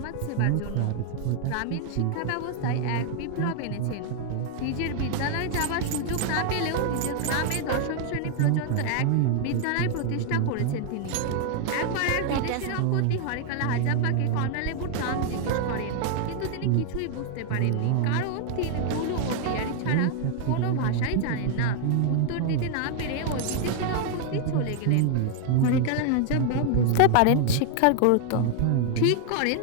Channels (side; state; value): both; different; correlation 0.00